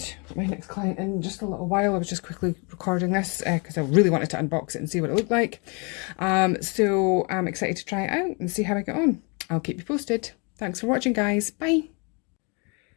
next client in just a little while. I was just quickly recording this because I really wanted to unbox it and see what it looked like. So I'm excited to try it out and see how I get on. I'll keep you posted. Thanks for watching, guys. Bye.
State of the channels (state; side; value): quieter; right; 32.8 dB